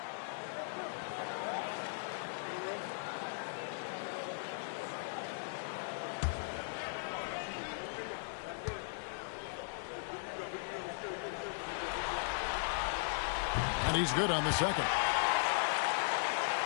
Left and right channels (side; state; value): right; silent; digital silence